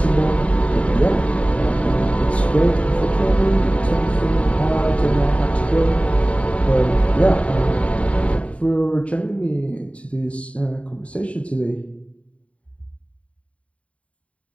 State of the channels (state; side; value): late; right; 0.064 ms